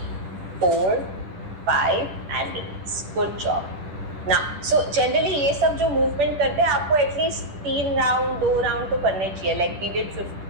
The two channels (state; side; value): late; left; 10 ms